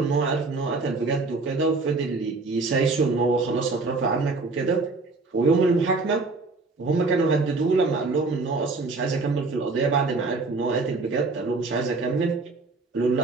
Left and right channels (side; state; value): left; quieter; 3.6 dB